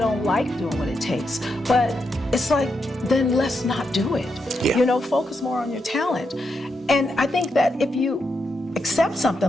like doing what it takes. But it's like, then let's not do it. Yeah. You know, focus more on your talent. And I think that if you accept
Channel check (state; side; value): normal; both; correlation 0.83